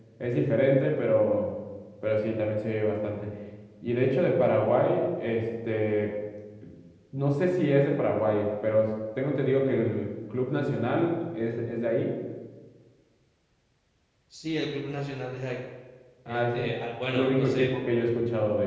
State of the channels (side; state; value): both; identical; correlation 1.00